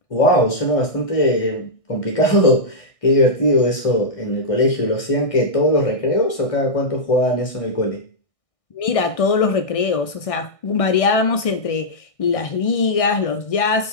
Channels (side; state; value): right; late; 1.6 ms